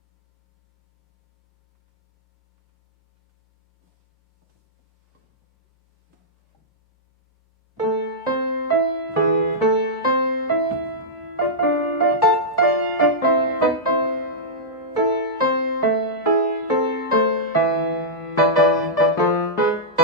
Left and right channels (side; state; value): both; normal; correlation -0.10